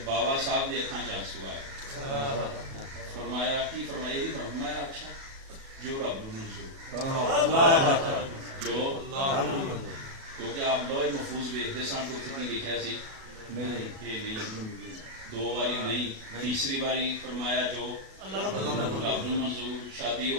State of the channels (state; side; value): late; left; 37 ms